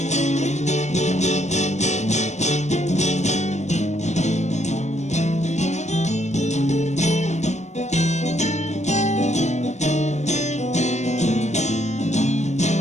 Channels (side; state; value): right; late; 0.34 ms